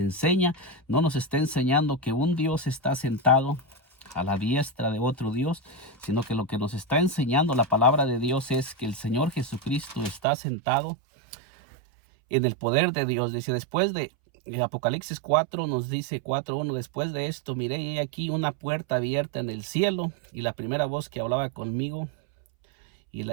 enseña. No nos está enseñando que un Dios está sentado a la diestra de otro Dios, sino que lo que nos está enseñando la palabra de Dios es que el Señor Jesucristo está sentado en el poder de Dios. Dice, después de Apocalipsis 4 nos dice 4:1, después de esto miré y aquí una puerta abierta en el cielo, y la primera voz que hablaba conmigo, y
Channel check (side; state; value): left; drops out; at 10.2 s